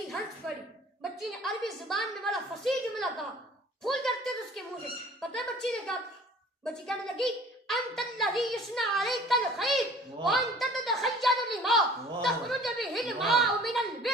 ہنس پڑی. بچی نے عربی زبان میں بڑا فصیح جملہ کہا, پھول جھڑتے تھے اس کے منہ سے. پتہ ہے بچی نے کہا؟ بچی کہنے لگی انت الذی یصنع علیک الخیر وانت تتخیل لما تخرج به الماء من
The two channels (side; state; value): both; normal; correlation 0.49